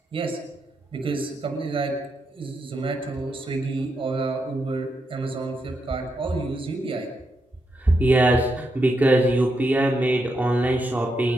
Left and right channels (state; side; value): normal; both; correlation 0.83